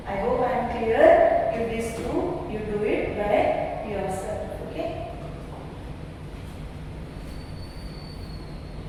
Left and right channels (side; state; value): both; identical; correlation 1.00